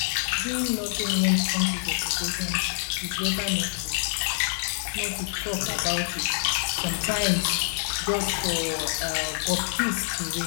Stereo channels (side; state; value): right; silent; 61 dB below the other